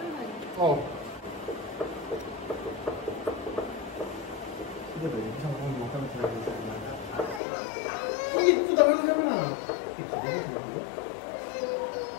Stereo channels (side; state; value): right; drops out; at 7.4 s